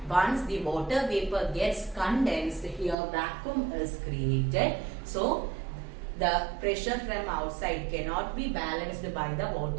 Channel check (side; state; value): left; drops out; at 3.0 s